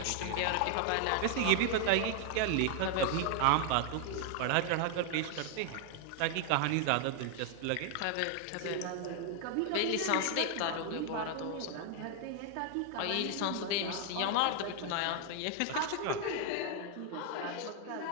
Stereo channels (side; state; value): both; different; correlation 0.00